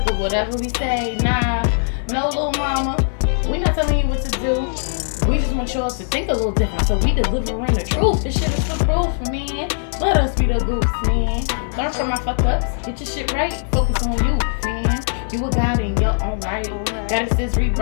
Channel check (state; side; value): silent; right; 66 dB below the other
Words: with whatever we say. Nah, no little mama. We not telling you what to do. We just want y'all to think a little different, so we delivering the truth. This shit is for proof, man. Let us be the goofs, man. Learn from my fuck ups. Get your shit right. Focus on you, man. You a god in your own right. Goddesses